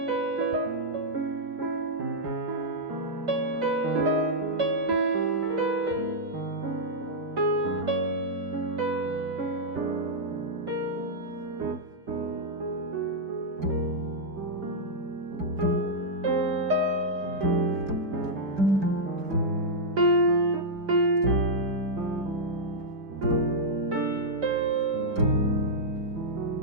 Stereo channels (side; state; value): left; late; 5.0 ms